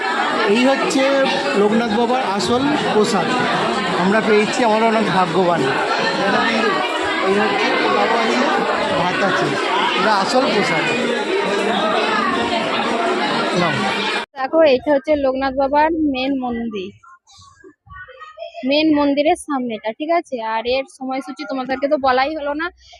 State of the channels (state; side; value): identical; both; correlation 1.00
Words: এই হচ্ছে লোকনাথ বাবার আসল প্রসাদ আমরা পেয়েছি, আমরা অনেক ভাগ্যবান। এই হচ্ছে বাবা আছে, ভাত আছে, এটা আসল প্রসাদ। নাও। দেখো এইটা হচ্ছে লোকনাথ বাবার মেন মন্দিরের সামনেটা, ঠিক আছে। আর এর সময়সূচি তোমাদেরকে তো বলাই হলো না।